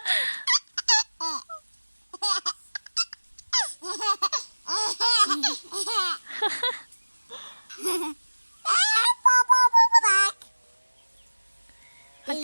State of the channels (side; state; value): both; inverted; correlation -1.00